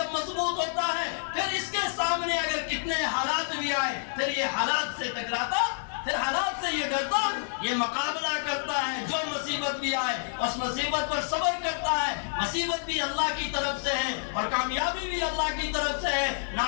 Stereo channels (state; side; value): silent; right; digital silence